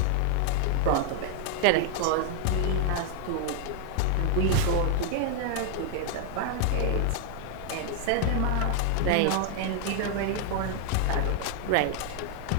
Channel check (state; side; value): different; both; correlation 0.00